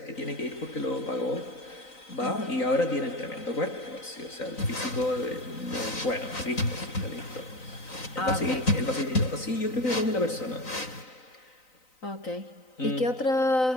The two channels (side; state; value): right; late; 3.9 ms